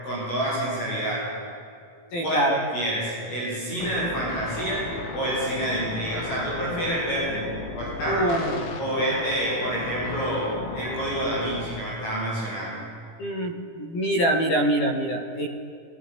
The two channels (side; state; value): right; late; 18 ms